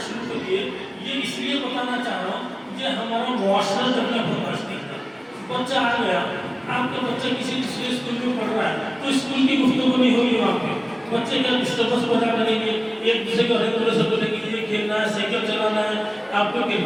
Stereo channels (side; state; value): both; identical; correlation 1.00